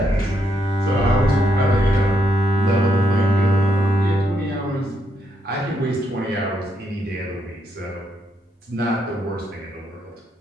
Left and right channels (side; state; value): both; normal; correlation 0.77